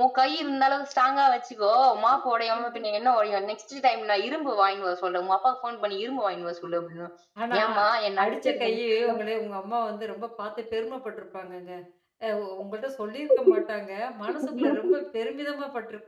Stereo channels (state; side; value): identical; both; correlation 1.00